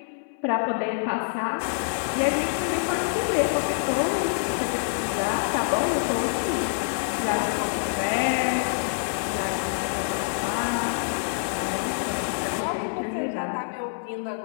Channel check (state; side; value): silent; right; 60 dB below the other